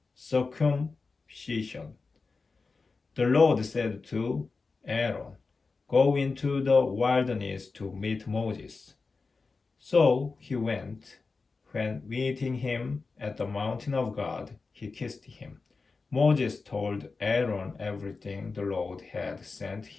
circumcision. The Lord said to Aaron, "Go into the wilderness to meet Moses." So he went. When meeting him at the mountain of God, he kissed him. Moses told Aaron everything the Lord had sent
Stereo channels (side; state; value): right; quieter; 4.2 dB